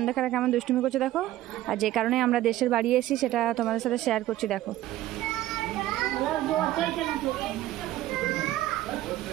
কেমন দুষ্টুমি করছে দেখো। আর যে কারণে আমরা দেশের বাড়ি এসেছি সেটা তোমাদের সাথে শেয়ার করছি। দেখো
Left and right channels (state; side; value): quieter; left; 14.8 dB